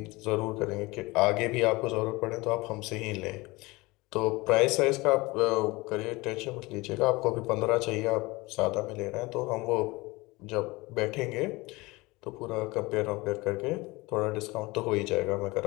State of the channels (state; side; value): quieter; right; 22.6 dB